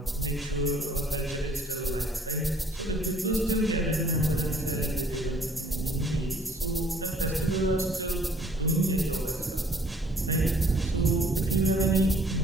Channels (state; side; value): normal; both; correlation 0.58